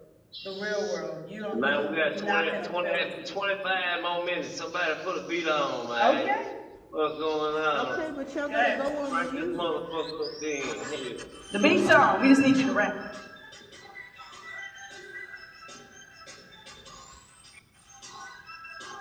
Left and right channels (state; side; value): identical; both; correlation 1.00